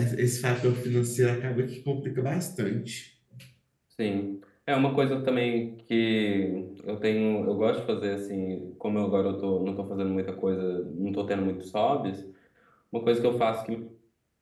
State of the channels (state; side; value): identical; both; correlation 1.00